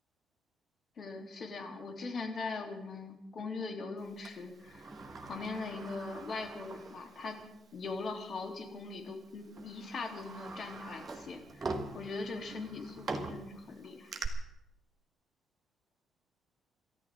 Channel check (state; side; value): normal; both; correlation 0.78